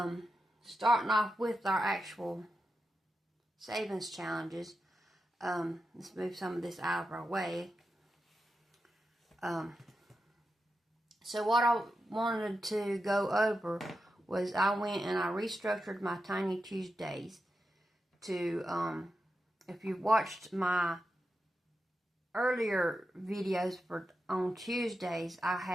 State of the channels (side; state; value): both; normal; correlation 0.89